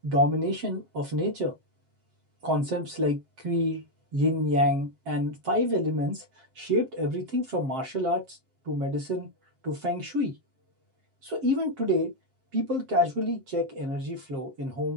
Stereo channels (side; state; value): left; late; 7.5 ms